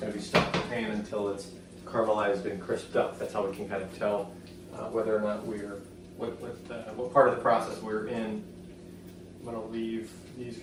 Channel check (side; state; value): both; identical; correlation 1.00